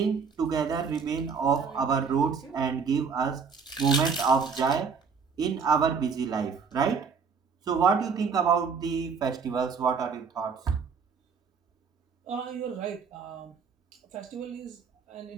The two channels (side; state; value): left; quieter; 5.7 dB